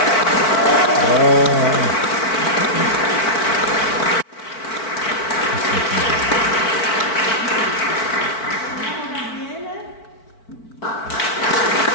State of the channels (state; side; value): late; right; 4.5 ms